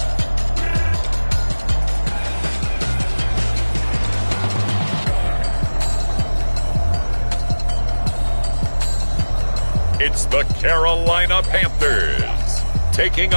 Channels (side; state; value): both; inverted; correlation -1.00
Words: It's the Carolina Panthers taking